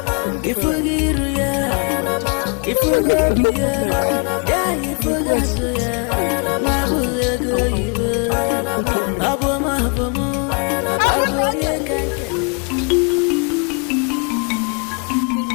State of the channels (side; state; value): right; quieter; 36.1 dB